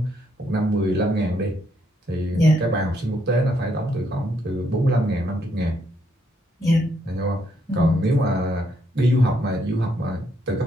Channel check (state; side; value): normal; both; correlation 0.74